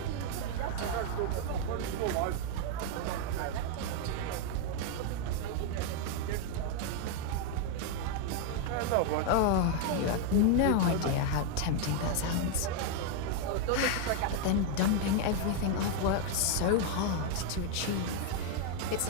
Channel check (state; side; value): different; both; correlation 0.01